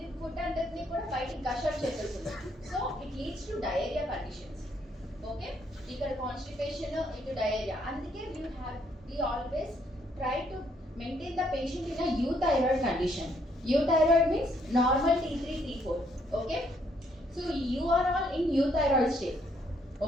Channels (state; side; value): normal; both; correlation 0.70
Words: ఫుడ్ అంతటిని కూడా బయటికి గషర్ చేసేస్తుంది. So it leads to diarrhoea conditions. Okay. ఇక్కడ కాన్స్టిపేషన్, ఇటు డయేరియా. అందుకే we always try to maintain the patient in a euthyroid condition. Euthyroid means normal T3 T4. Okay. So you are all in euthyroid state.